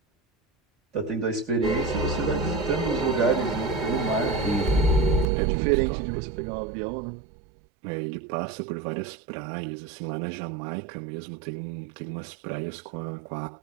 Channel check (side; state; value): left; drops out; at 5.2 s